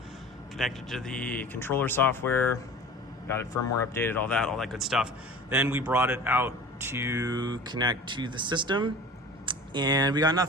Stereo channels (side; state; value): both; normal; correlation 0.40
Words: connected to the controller software, got it firmware updated, all that good stuff. Then we brought it out to connect to the system, and we got